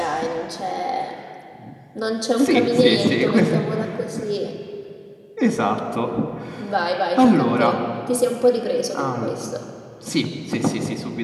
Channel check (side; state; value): both; identical; correlation 1.00